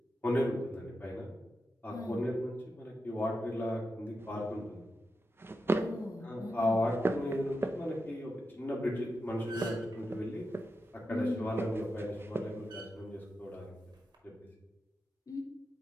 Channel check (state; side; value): normal; both; correlation 0.88